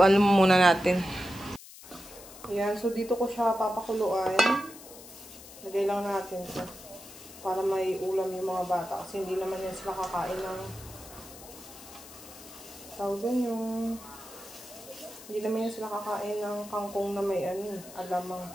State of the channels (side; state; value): left; noise; hiss, 17 dB below the sound